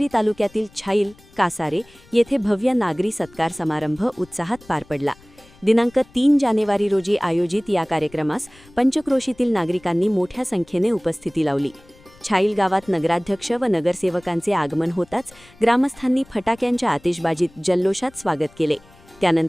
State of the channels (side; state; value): left; noise; rumble, 26 dB below the sound